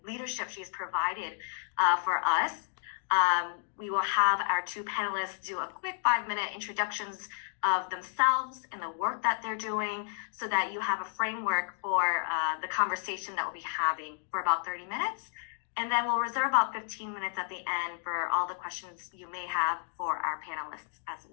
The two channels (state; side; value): silent; right; digital silence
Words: leadership she's provided for us. We will have our two panelists do a quick 5-minute introductions of themselves and the work that they're doing so that you have a framework for the conversation that we'll be having for about 30 minutes. And then we'll reserve about 15 minutes at the end for all the questions you may have for our panelists as